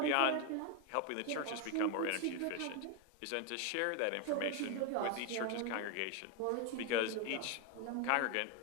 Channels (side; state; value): both; different; correlation 0.01